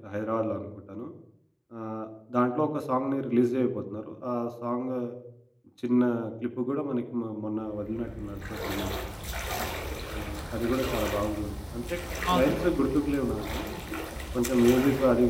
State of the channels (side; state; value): both; identical; correlation 1.00